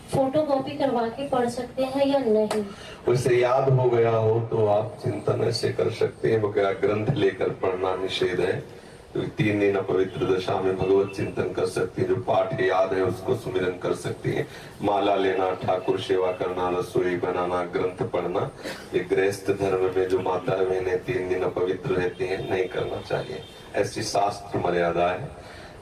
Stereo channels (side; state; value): both; identical; correlation 1.00